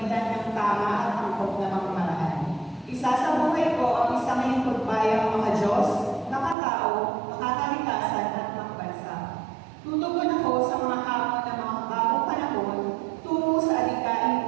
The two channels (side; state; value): left; drops out; at 6.6 s